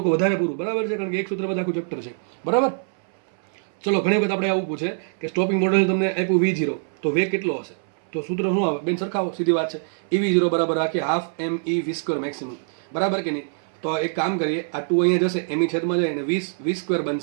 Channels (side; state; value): left; silent; 63 dB below the other